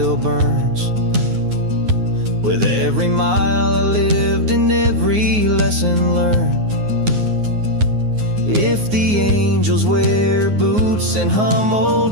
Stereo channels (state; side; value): late; left; 9.5 ms